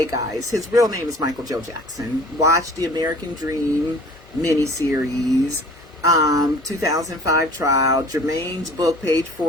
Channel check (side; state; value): both; normal; correlation 0.48